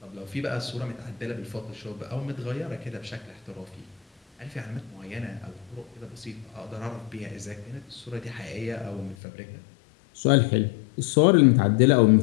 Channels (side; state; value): right; drops out; at 9.2 s